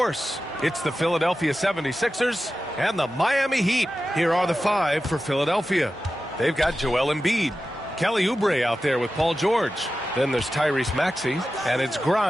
It's the Philadelphia 76ers and the Miami Heat. Here are the five for Philadelphia. They've got Joel Embiid, Kelly Oubre out there with Paul George. Then there's Tyrese Maxey, and it's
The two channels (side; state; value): both; normal; correlation 0.93